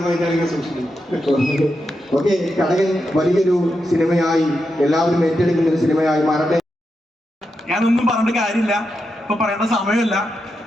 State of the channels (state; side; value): normal; both; correlation 0.86